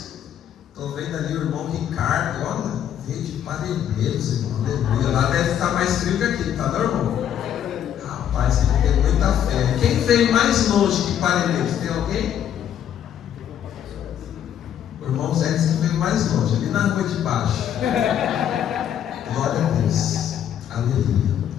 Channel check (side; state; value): right; quieter; 9.9 dB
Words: Estou vendo ali o irmão Ricardo, olha, veio de Parelheiros, irmão. Aleluia. Lá deve estar mais frio que aqui, tá, não, irmão? Rapaz, ele tem muita fé. Quem veio mais longe que Parelheiros? Tem alguém? O irmão Zé disse que veio mais longe, ali na rua de baixo. Glória a Deus. Aleluia.